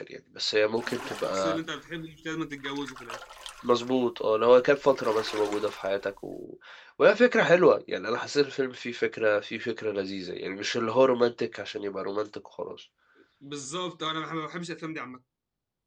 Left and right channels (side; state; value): both; identical; correlation 1.00